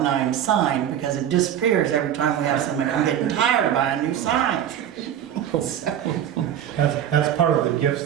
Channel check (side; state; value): left; quieter; 10.2 dB